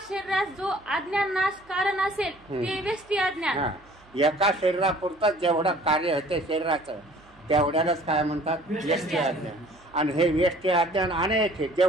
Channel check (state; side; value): noise; right; hum, 28 dB below the sound